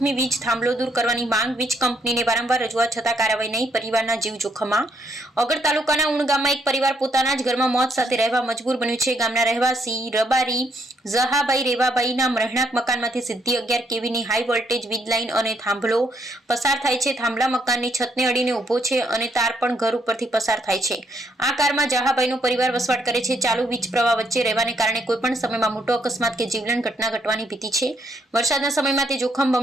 વીજ થાંભલો દૂર કરવાની માંગ વીજ કંપનીને વારંવાર રજૂઆત છતાં કાર્યવાહી નહીં. પરિવારના જીવ જોખમમાં. ઓગળ તાલુકાના ઉણ ગામમાં એક પરિવાર પોતાના જ ઘરમાં મોત સાથે રહેવા મજબૂર બન્યું છે. ગામના રહેવાસી રબારી ઝહાભાઈ રેવાભાઈના રહેણાંક મકાનમાંથી સીધી 11 કેવીની હાઈ વોલ્ટેજ વીજ લાઇન અને થાંભલો પસાર થાય છે. થાંભલા મકાનની છતને અડીને ઊભો છે અને તાર પણ ઘર ઉપરથી પસાર થાય છે. આ કારમાં ઝહાભાઈનો પરિવાર વસવાટ કરે છે. ચાલુ વીજ પ્રવાહ વચ્ચે રહેવાને કારણે કોઈપણ સમયમાં મોટો અકસ્માત કે જીવલેણ ઘટના ઘટવાની ભીતિ છે. વરસાદના સમયમાં તે જોખમ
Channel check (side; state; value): both; normal; correlation 0.73